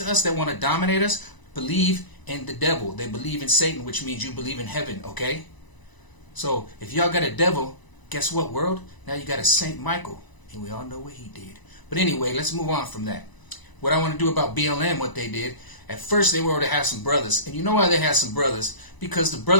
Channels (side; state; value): right; late; 1.0 ms